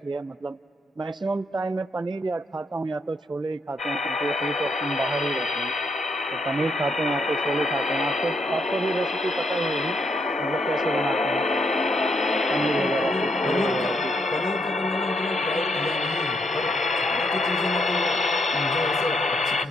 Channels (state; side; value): normal; both; correlation 0.75